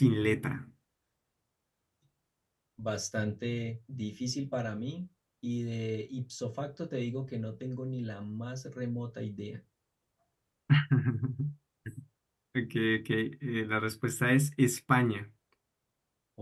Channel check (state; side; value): identical; both; correlation 1.00